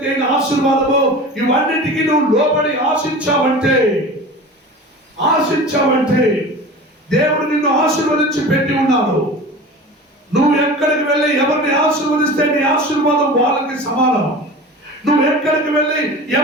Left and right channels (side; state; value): both; normal; correlation 0.35